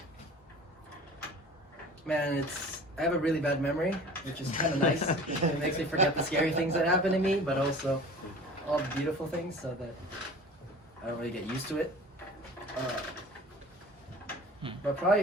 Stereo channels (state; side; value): normal; both; correlation 0.42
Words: Man, I have a really bad memory, which is kind of nice. It makes me forget the scary things that happen to me, but also all the beautiful things, so that I don't really get used to it. But probably